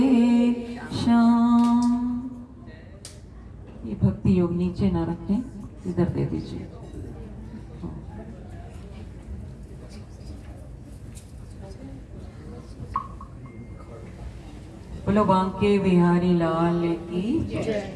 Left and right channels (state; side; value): identical; both; correlation 1.00